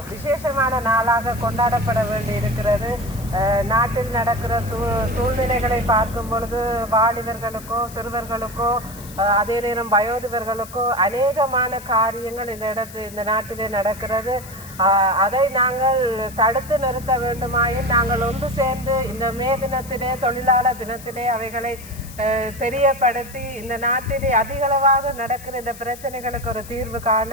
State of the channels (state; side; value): noise; left; hiss, 17 dB below the sound